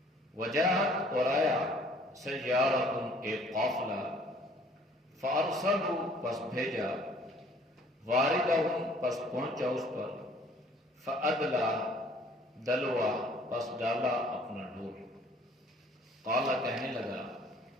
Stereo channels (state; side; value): normal; both; correlation 0.56